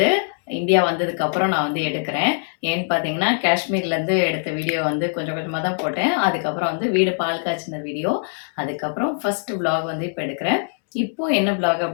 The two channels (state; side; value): silent; right; digital silence